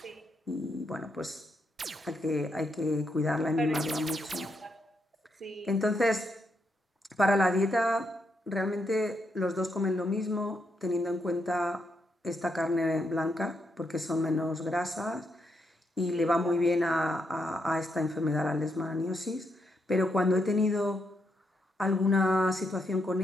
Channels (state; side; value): normal; both; correlation 0.80